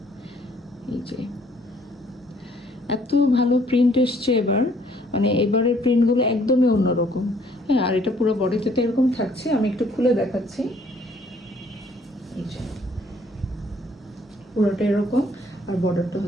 এই যে এত ভালো প্রিন্ট এসছে এবার, মানে এবারের প্রিন্টগুলো একদমই অন্যরকম। হ্যাঁ, আর এটা পুরো বডিতে তো এরকম থাকছে, আমি একটু খুলে দেখাচ্ছি। এই যে পুরোটা এরকম, আর বর্ডারটা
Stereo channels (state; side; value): normal; both; correlation 0.63